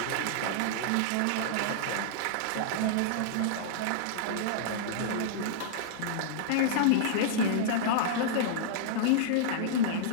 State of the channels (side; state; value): both; different; correlation -0.02